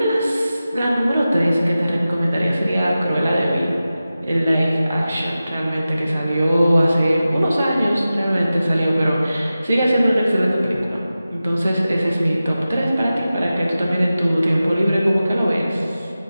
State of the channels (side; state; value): both; inverted; correlation -0.94